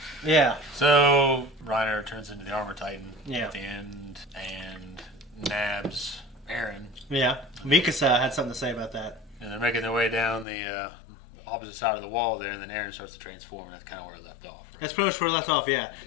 Yeah. So, Reiner turns into the Armored Titan at the end and nabs Eren. Yeah. Mikasa had something to say about that. And they're making their way down the opposite side of the wall there, and then Eren starts to transform, and that's kind of where it left off. Right? That's pretty much where it left off, yeah.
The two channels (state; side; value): drops out; right; at 10.5 s